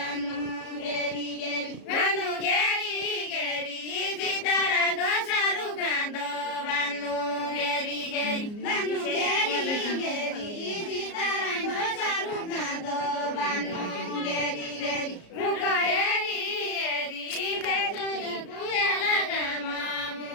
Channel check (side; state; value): right; late; 33 ms